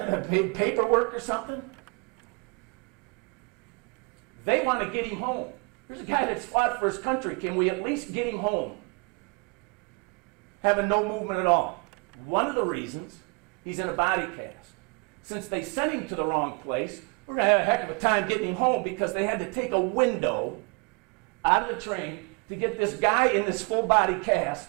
or something? They want to get him home. There's a guy that's fought for his country. Can we at least get him home? Having no movement at all. One of the reasons he's in a body cast. Since they sent him to the wrong place, we're going to have a heck of a time getting him home because they had to take a window out of the train to get this guy in this full body cast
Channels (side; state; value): left; quieter; 32.9 dB